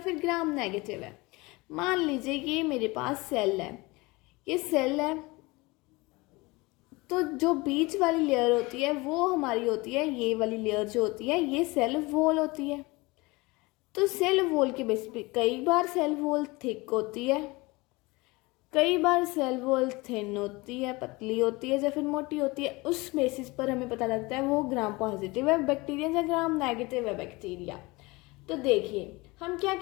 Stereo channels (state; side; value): quieter; right; 23.6 dB